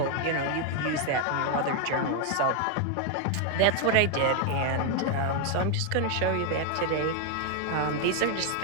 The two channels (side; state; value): both; different; correlation 0.00